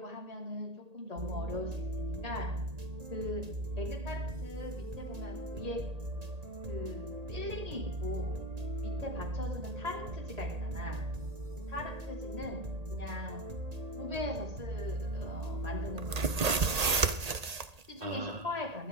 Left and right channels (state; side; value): late; left; 1.8 ms